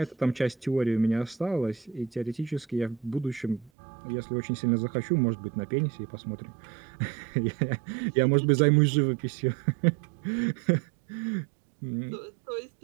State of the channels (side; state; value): left; drops out; at 3.7 s